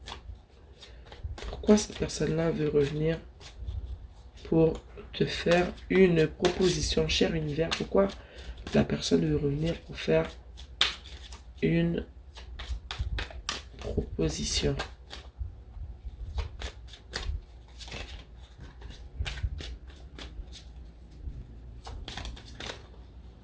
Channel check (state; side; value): identical; both; correlation 1.00